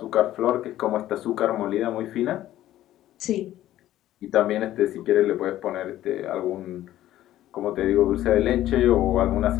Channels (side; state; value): right; quieter; 13.6 dB